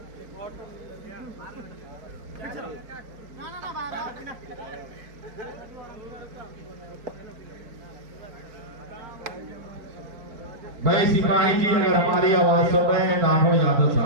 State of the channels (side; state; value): left; late; 4.6 ms